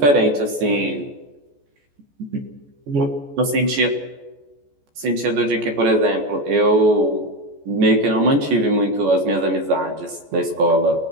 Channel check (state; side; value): late; left; 14 ms